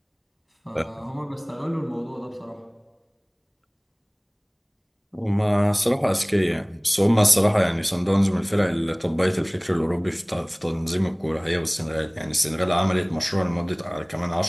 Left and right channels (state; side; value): identical; both; correlation 1.00